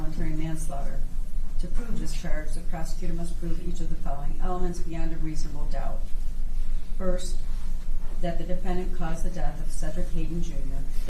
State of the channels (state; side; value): identical; both; correlation 1.00